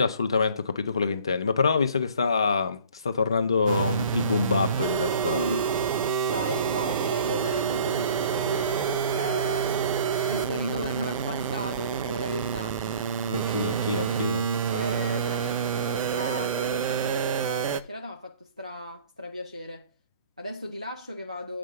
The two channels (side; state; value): both; inverted; correlation -0.49